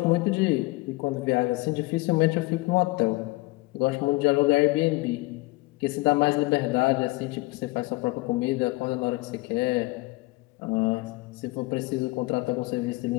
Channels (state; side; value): quieter; right; 21.7 dB